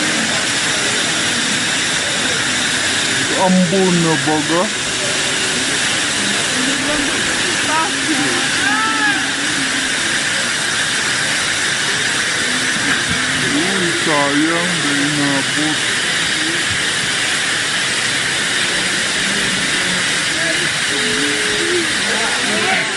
Ambon na baga. Uy, sayang, dahil nabot.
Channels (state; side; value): identical; both; correlation 1.00